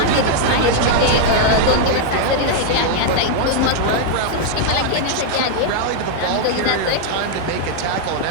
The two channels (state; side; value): different; both; correlation 0.00